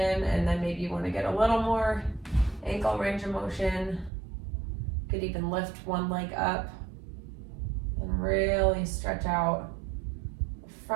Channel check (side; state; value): left; drops out; at 4.1 s